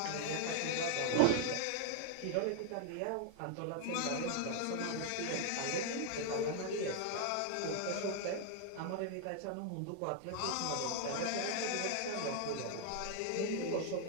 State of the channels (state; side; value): different; both; correlation 0.00